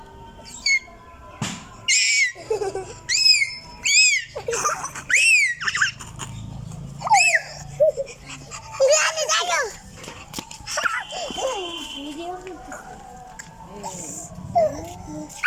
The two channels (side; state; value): both; identical; correlation 1.00